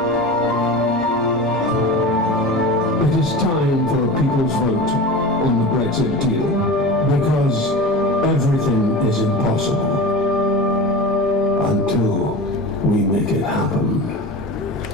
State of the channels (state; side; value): normal; both; correlation 0.30